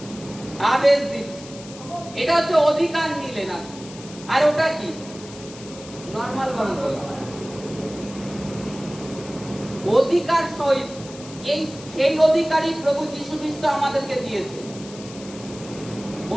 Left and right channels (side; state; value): left; noise; hiss, 17 dB below the sound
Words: আদেশ দিচ্ছি। এটা হচ্ছে অধিকার নিলেন আপনি। আর ওটা কি? নরমাল ভাবে বলা অধিকার সহিত, সেই অধিকারই প্রভু যীশু খ্রিস্ট আমাদেরকে দিয়েছে,